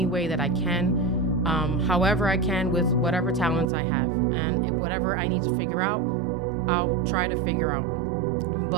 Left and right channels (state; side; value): drops out; left; at 3.7 s